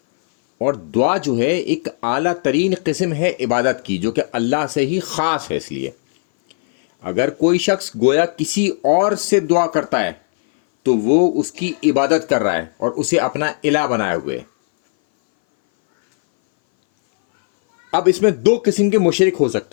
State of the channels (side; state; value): right; silent; 61 dB below the other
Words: اور دعا جو ہے ایک اعلیٰ ترین قسم ہے عبادت کی جو کہ اللہ سے ہی خاص ہے۔ اس لیے اگر کوئی شخص گویا کسی اور سے دعا کرتا ہے تو وہ اس کی عبادت کر رہا ہے اور اسے اپنا الہ بنائے ہوئے ہے۔ اب اس میں دو قسم کے مشرک ہو